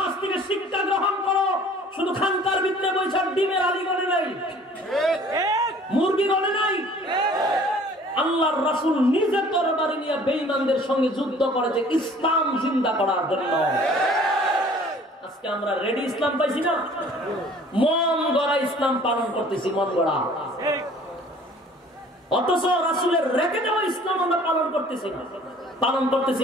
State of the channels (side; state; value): both; normal; correlation 0.51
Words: থেকে শিক্ষা গ্রহণ করো। শুধু খানকার ভিতরে বৈশাখ ডিমের আলী গড়ে নাই, মুরগি গড়ে নাই। আল্লাহর রাসূল নিজের তরবারি নিয়ে বেঈমানদের সঙ্গে যুদ্ধ করেছে ইসলাম জিন্দা করার জন্য। আজকে আমরা রেডি ইসলাম পাইছি না, মন গড়া ইসলাম পালন করতেছি, মন গড়া। অথচ রাসূলের রেখে দেওয়া ইসলাম আমরা পালন করতেছি না, পালন করতেছি